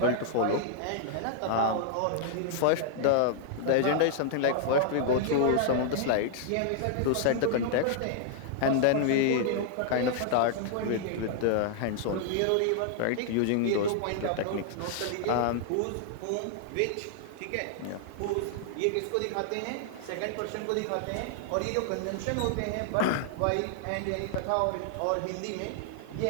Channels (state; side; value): different; both; correlation -0.01